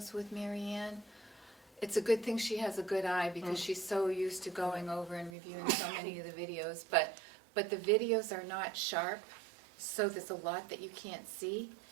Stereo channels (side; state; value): left; drops out; at 5.4 s